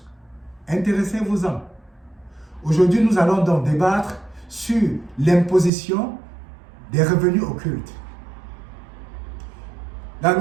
Intéressez-vous-en. Aujourd'hui, nous allons donc débattre sur l'imposition des revenus occultes. La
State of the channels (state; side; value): drops out; left; at 5.7 s